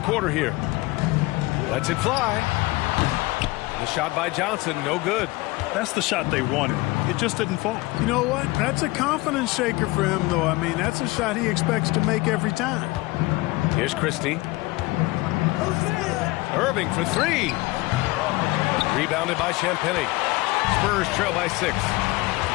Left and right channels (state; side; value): quieter; right; 21.7 dB